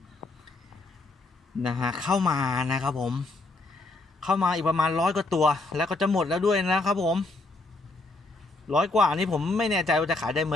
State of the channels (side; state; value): right; quieter; 3.1 dB